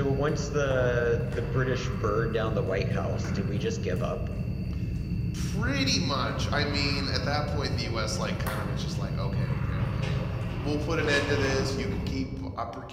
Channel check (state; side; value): identical; both; correlation 1.00